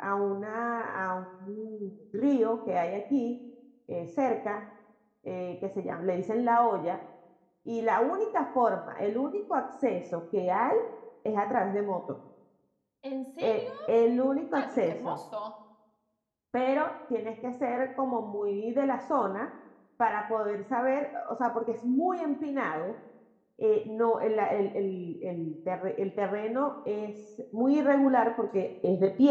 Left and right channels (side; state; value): both; identical; correlation 1.00